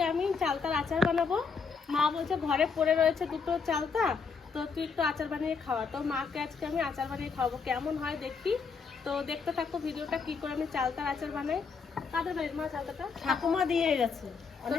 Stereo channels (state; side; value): quieter; right; 5.3 dB